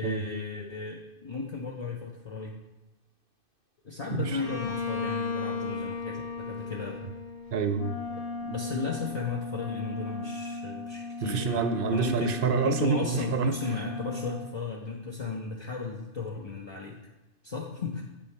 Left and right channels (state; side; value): late; left; 2.5 ms